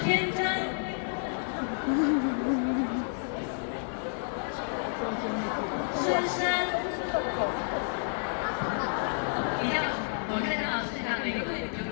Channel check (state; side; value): silent; right; digital silence